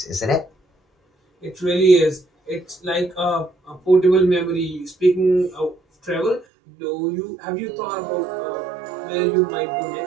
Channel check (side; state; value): left; drops out; at 6.5 s